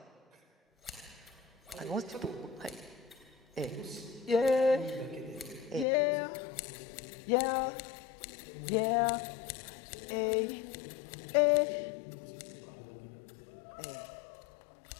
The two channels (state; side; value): drops out; right; at 5.9 s